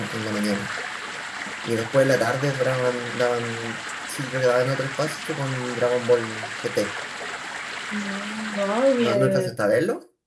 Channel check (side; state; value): both; identical; correlation 1.00